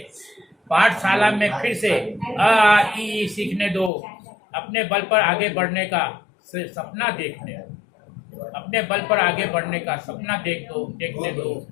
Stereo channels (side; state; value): right; drops out; at 3.9 s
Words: पाठशाला में फिर से अ आ इ ई सीखने दो। अपने बल पर आगे बढ़ने का सपना देखने दो, अपने बल पर आगे बढ़ने का सपना देखने दो।